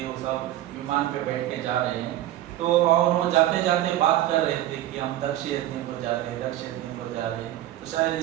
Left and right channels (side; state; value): left; quieter; 13.8 dB